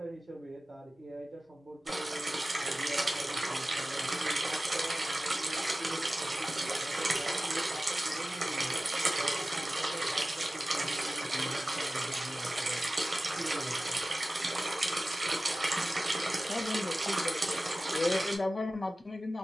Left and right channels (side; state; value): both; normal; correlation 0.95